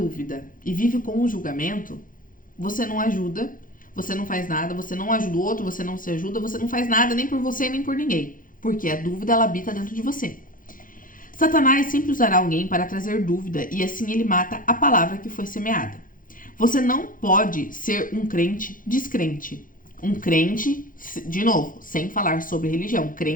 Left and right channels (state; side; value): late; right; 0.40 ms